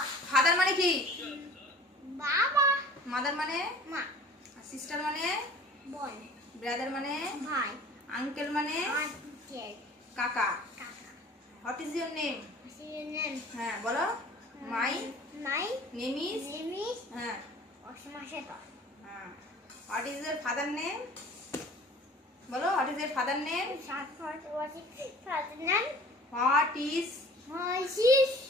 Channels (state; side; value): normal; both; correlation 0.46